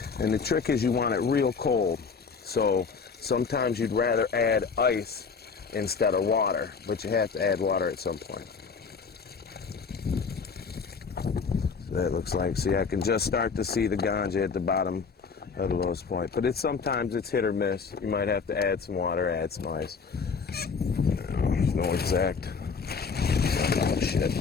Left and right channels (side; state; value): right; quieter; 5.3 dB